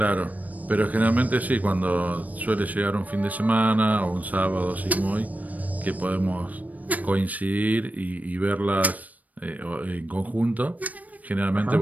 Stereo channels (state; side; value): late; left; 0.075 ms